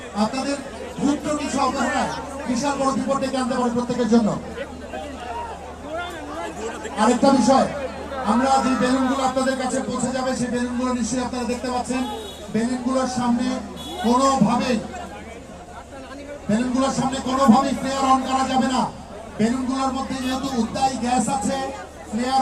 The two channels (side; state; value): both; identical; correlation 1.00